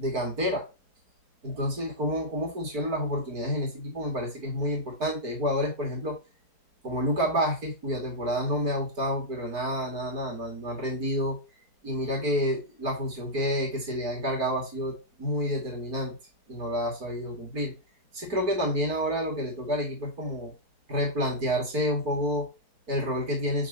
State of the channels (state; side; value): late; left; 4.5 ms